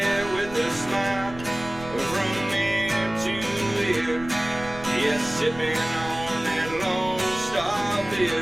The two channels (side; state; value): right; noise; rumble, 15 dB below the sound